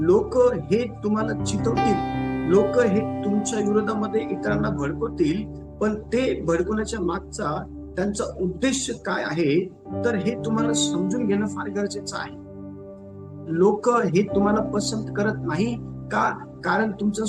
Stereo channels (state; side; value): identical; both; correlation 1.00